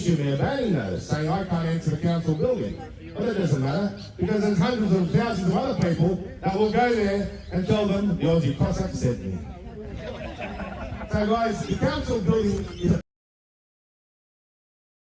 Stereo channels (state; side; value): identical; both; correlation 1.00